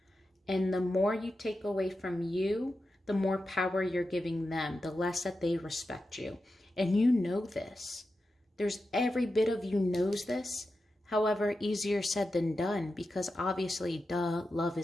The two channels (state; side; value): normal; both; correlation 0.90